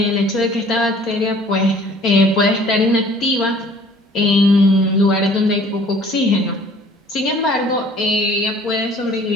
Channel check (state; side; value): normal; both; correlation 0.53